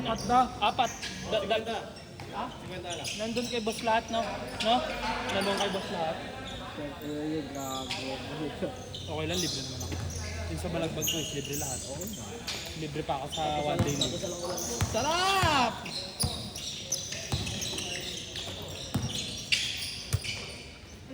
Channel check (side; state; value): both; identical; correlation 1.00